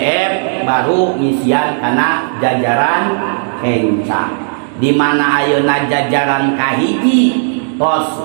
baru ngisian kana jajaran kencang. Di mana ayeuna jajaran kahiji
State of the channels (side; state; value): left; silent; digital silence